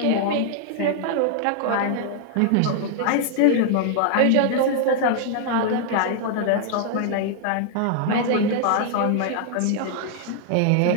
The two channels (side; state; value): both; different; correlation 0.00